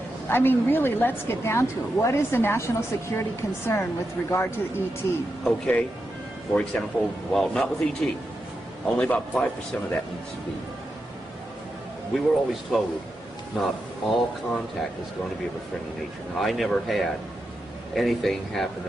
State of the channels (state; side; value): normal; both; correlation 0.87